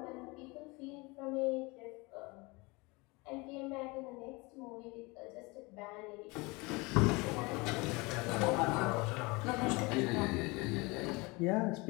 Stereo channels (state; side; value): quieter; right; 25.6 dB